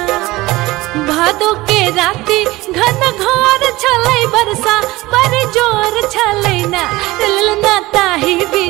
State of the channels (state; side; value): quieter; left; 19.6 dB